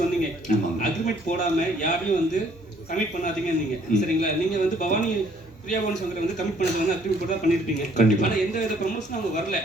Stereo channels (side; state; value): both; normal; correlation 0.62